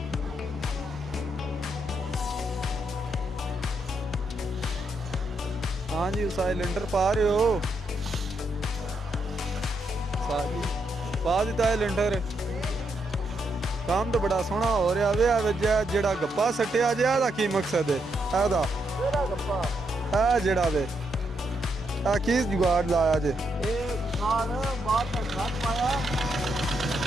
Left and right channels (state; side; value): normal; both; correlation 0.79